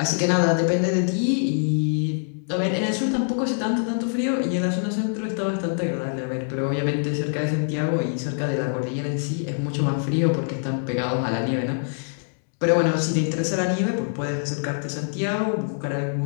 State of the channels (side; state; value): right; silent; digital silence